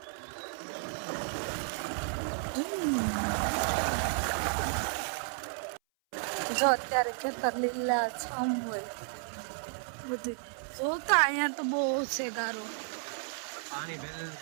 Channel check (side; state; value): left; silent; 56 dB below the other